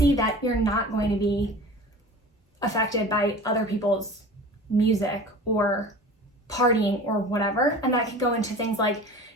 that you're not going to be affected by other people's music or partying or whatever. And that can go into things like,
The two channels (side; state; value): both; normal; correlation 0.38